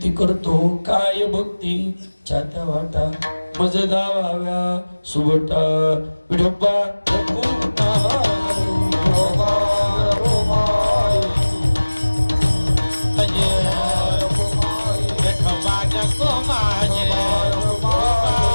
करतो, काय भक्ती छात्या वाटा मज दावाव्या सुबटा विठोबा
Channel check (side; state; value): both; inverted; correlation -1.00